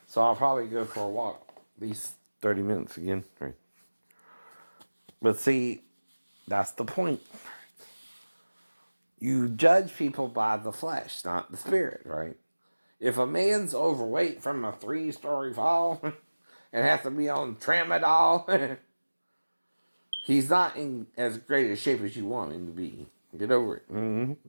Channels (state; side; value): inverted; both; correlation -1.00